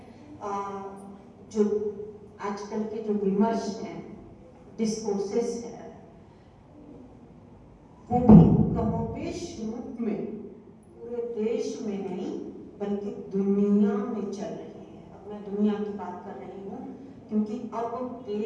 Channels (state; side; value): identical; both; correlation 1.00